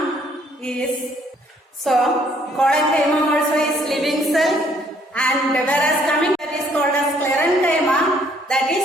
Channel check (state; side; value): normal; both; correlation 0.64